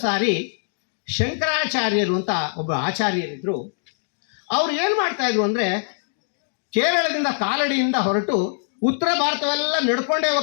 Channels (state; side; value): silent; right; digital silence